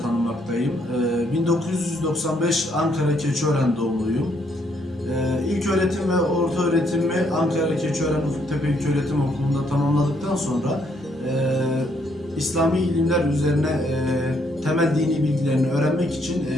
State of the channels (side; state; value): both; normal; correlation 0.71